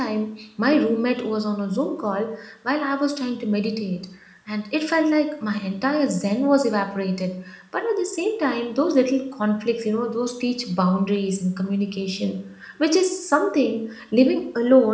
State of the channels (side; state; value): both; identical; correlation 1.00